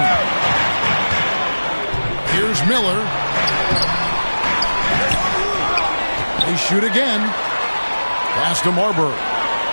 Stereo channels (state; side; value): inverted; both; correlation -1.00